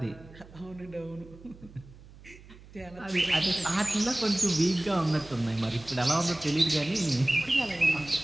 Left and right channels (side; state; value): right; noise; hum, 21 dB below the sound